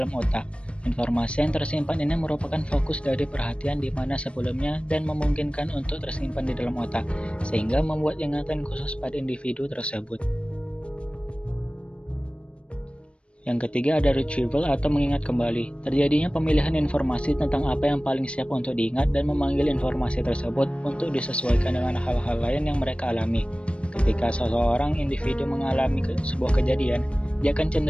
otak. Informasi yang tersimpan ini merupakan fokus dari perhatian di mana sebelumnya dan memungkinkan untuk tersimpan di dalam otak, sehingga membuat ingatan khusus pada individu tersebut. Yang ketiga ada retrieval atau mengingat kembali. Terjadinya pemilihan informasi tentang apa yang paling siap untuk diingat dan memanggil informasi tersebut untuk disesuaikan dengan hal-hal lain yang mereka alami. Ketika seseorang individu mengalami sebuah kejadian, dia akan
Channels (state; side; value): late; right; 0.059 ms